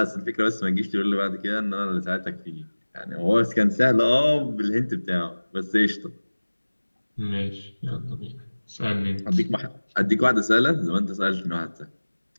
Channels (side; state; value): both; inverted; correlation -1.00